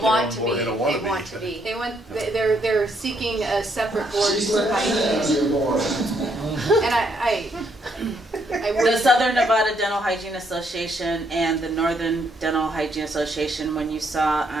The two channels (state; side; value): normal; both; correlation 0.73